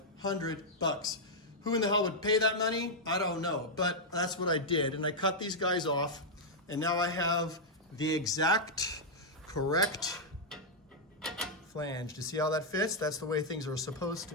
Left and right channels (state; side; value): normal; both; correlation -0.04